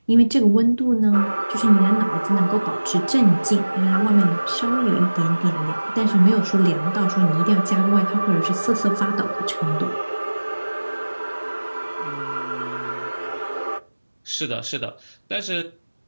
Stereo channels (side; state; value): both; inverted; correlation -1.00